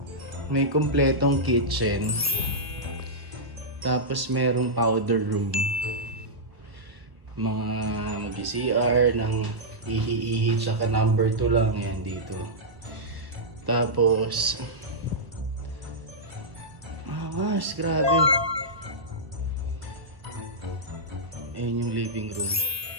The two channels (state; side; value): late; left; 1.2 ms